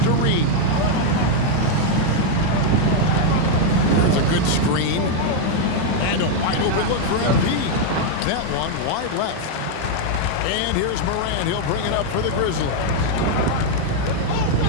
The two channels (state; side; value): different; both; correlation 0.00